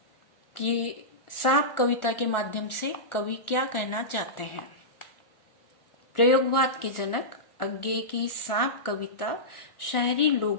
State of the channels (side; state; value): right; late; 1.4 ms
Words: कि सांप कविता के माध्यम से कवि क्या कहना चाहते हैं। प्रयोगवाद के जनक अज्ञे की सांप कविता शहरी